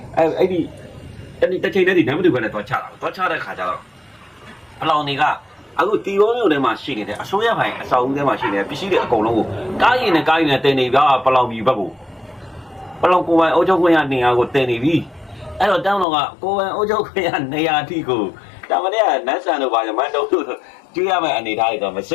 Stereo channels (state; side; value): drops out; right; at 16.1 s